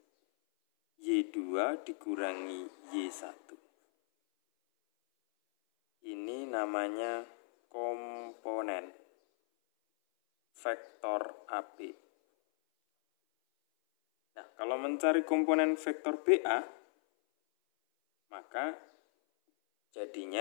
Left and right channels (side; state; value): right; silent; 53 dB below the other